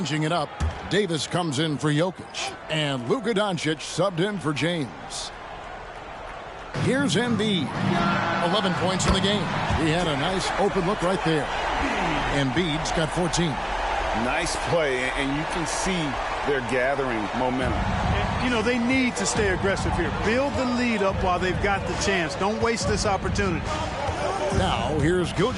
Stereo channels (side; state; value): both; identical; correlation 1.00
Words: it up. Davis comes in for Jokic. And Luka Doncic subbed in for James. Here's Embiid. 11 points in the game. He had a nice open look right there. Embiid's got 14. Nice play, and you can see they're gathering momentum. And, you know, they need to stay aggressive here. Build the lead up while they've got the chance. Don't waste this opportunity. Now, here's